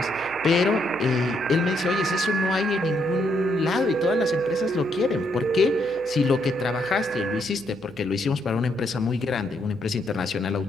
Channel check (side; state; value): left; noise; hum, 28 dB below the sound